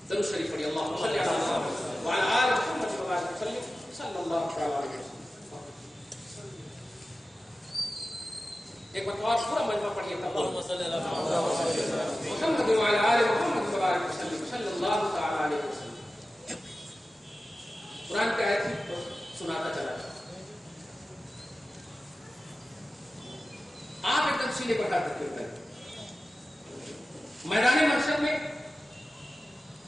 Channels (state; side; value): normal; both; correlation 0.95